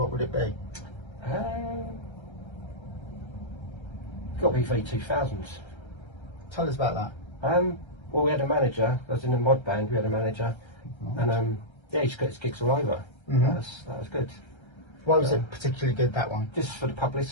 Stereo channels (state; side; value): late; right; 1.3 ms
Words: would it be? Got to be V2000s. Tell us about that. Well, we had a manager. I was in a mod band. We had a manager, and yeah, he just got his gigs all over. That was good. Why was it particularly good, that one? Just for the